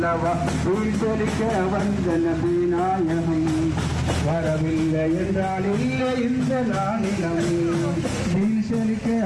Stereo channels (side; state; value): both; identical; correlation 1.00